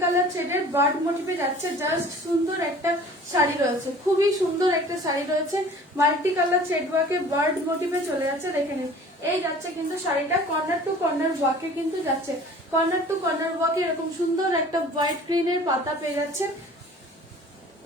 কালার থ্রেডের বার্ড মোটিভে যাচ্ছে। জাস্ট সুন্দর একটা শাড়ি রয়েছে, খুবই সুন্দর একটা শাড়ি রয়েছে। মাল্টি কালার থ্রেড ওয়ার্কে বার্ড মোটিভে চলে যাচ্ছে, দেখে নিন। এই যাচ্ছে কিন্তু শাড়িটা কর্নার টু কর্নার ওয়ার্কে কিন্তু যাচ্ছে, কর্নার টু কর্নার ওয়ার্কে এরকম সুন্দর একটা হোয়াইট গ্রিনের পাতা পেয়ে যাচ্ছে,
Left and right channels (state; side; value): normal; both; correlation 0.47